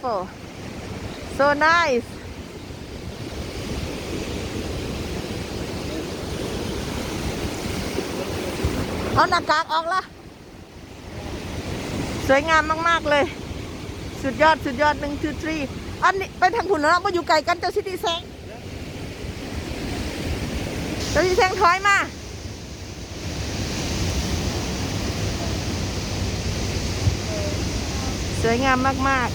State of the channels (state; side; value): identical; both; correlation 1.00